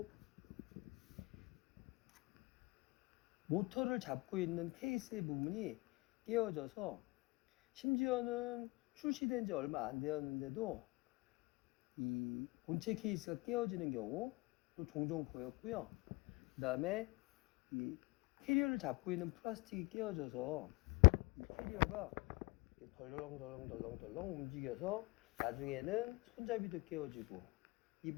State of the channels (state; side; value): quieter; right; 24.8 dB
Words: 모터를 잡고 있는 케이스의 부분이 깨어져서 심지어는 출시된 지 얼마 안 되었는데도 이 본체 케이스가 깨어지는 경우도 종종 보였고요. 그 다음에 이 캐리어를 잡고 있는 플라스틱이 깨어져서 이 캐리어가 덜렁덜렁 움직여서 나중에는 손잡이도 깨어지고 이